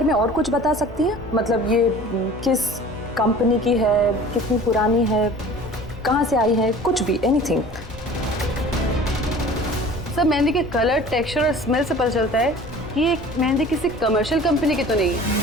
में और कुछ बता सकती हैं? मतलब ये किस कंपनी की है, कितनी पुरानी है, कहाँ से आई है, कुछ भी, एनीथिंग। सर मेहंदी के कलर, टेक्सचर और स्मेल से पता चलता है कि ये मेहंदी किसी कमर्शियल कंपनी की तो नहीं है,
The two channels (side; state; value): left; noise; hum, 15 dB below the sound